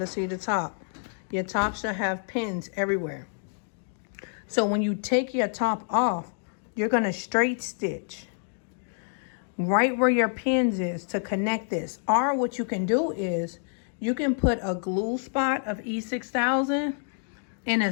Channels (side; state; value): right; silent; 60 dB below the other